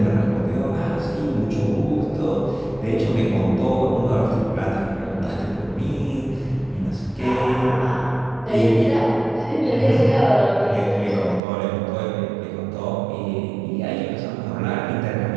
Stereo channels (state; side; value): drops out; left; at 11.4 s